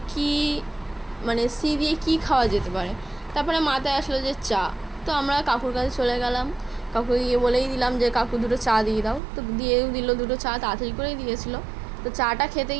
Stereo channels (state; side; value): drops out; left; at 9.2 s